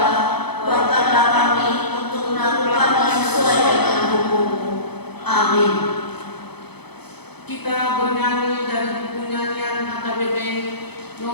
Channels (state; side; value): late; right; 0.98 ms